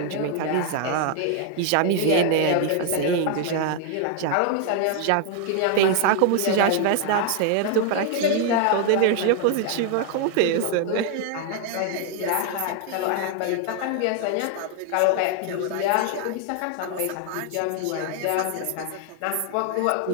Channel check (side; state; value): both; different; correlation 0.00